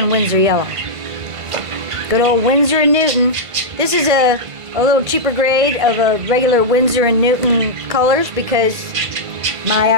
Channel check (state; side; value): late; left; 1.5 ms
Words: Winsor yellow. Good old Winsor & Newton. This is a little cheaper grade of a regular Winsor & Newton colors because my